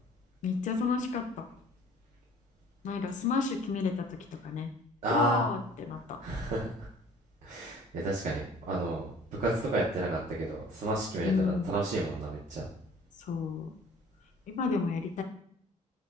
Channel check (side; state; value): both; normal; correlation 0.50